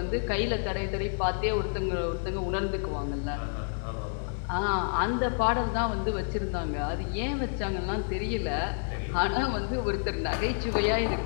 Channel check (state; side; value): silent; right; digital silence